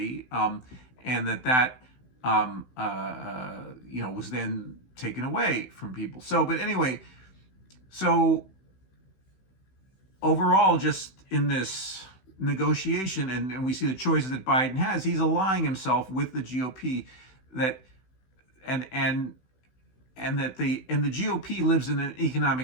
and that was then taken away from people. So, but anyway, so overall, just in this negotiation, and we see the choices that Biden has, he's aligning himself with the GOP, that the GOP lives in an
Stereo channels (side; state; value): right; late; 16 ms